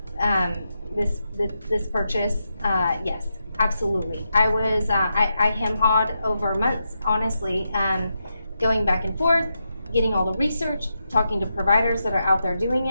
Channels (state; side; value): inverted; both; correlation -0.86